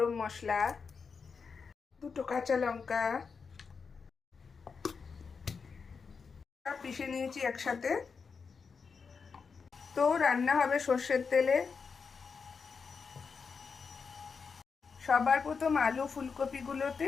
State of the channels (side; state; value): right; quieter; 5.4 dB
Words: মশলা, দুটো কাঁচা লঙ্কা সব পিষে নিয়েছি একসাথে। তো রান্না হবে সর্ষের তেলে। সবার প্রথম আলু ফুলকপিগুলোতে